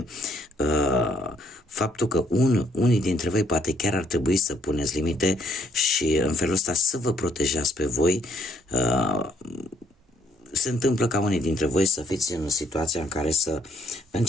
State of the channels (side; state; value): both; normal; correlation 0.68